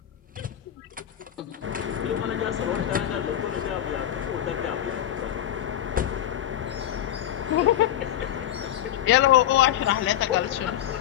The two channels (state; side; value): quieter; right; 11.6 dB